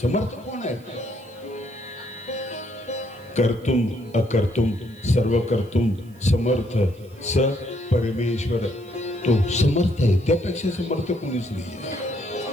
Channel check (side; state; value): right; noise; hiss, 29 dB below the sound